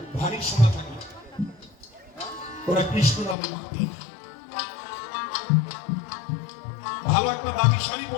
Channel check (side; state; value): right; drops out; at 3.4 s